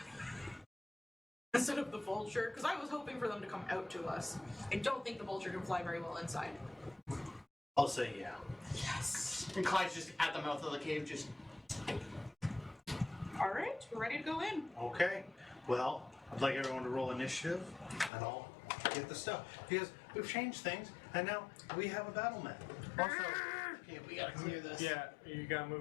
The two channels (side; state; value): right; drops out; at 18.1 s